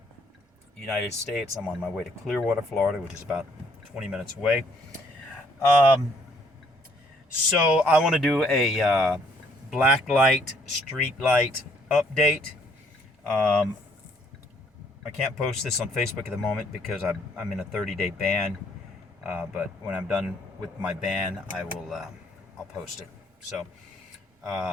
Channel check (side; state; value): both; normal; correlation 0.65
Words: United States. I'm on my way to Clearwater, Florida, which is about 20 minutes away. So I want to do a Blacklight Streetlight update. I can't post this on Facebook at the moment because I'm in a 30-day ban. But when I'm done with my ban, I'll post it. So,